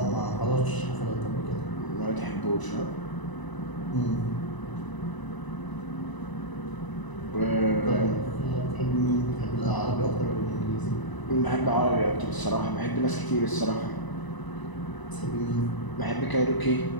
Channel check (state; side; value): late; right; 1.0 ms